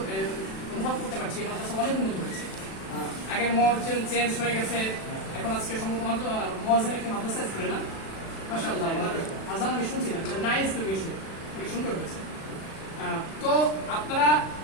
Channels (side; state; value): right; late; 36 ms